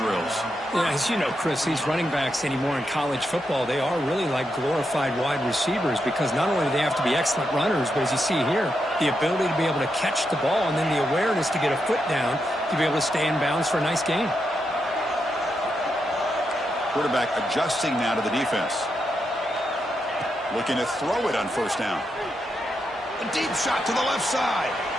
Yeah, as you know, Chris, these running backs anymore in college football, they are really like glorified wide receivers because not only do they have to be excellent runners, but as you see here, the ability to be able to catch the ball and then the awareness to get a foot down to be able to stay in bounds for a nice gain. Quarterback adjusting now to the defense. Looking to throw it on first down. A deep shot to the left side.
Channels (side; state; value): both; normal; correlation 0.84